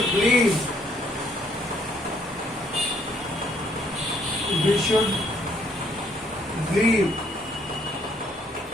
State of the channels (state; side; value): normal; both; correlation 0.67